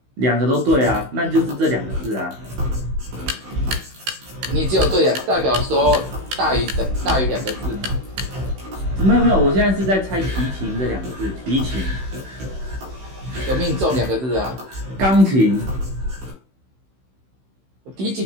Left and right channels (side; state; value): left; late; 16 ms